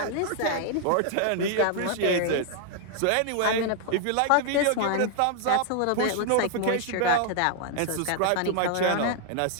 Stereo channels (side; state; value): both; different; correlation 0.00